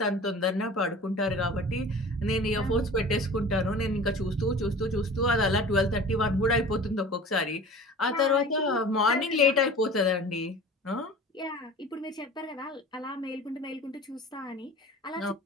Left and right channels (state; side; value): normal; both; correlation 0.40